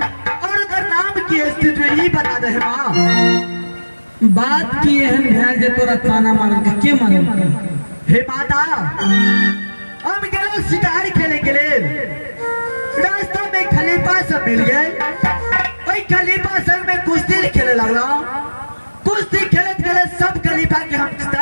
और अगर नाम की है तो ये बता दे माँ। बात की एहन ध्यान जे तोरा ताना मारल का? के मारल का? हे माता, हम गए शिकार खेले के लिए, रास्ता में खलीफा सब मिल गए, वही खलीफा सब में कुश्ती खेले लगला, कुश्ती खेलत खेलत सब खलीफा के हम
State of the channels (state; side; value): inverted; both; correlation -1.00